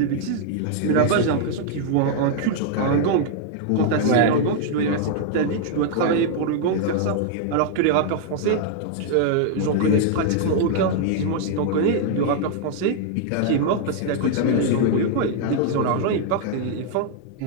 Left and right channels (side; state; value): both; different; correlation -0.01